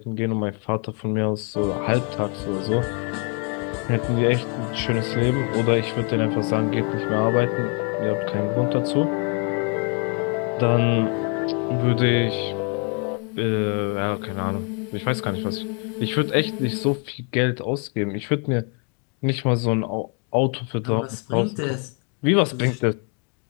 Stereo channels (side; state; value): right; quieter; 38.1 dB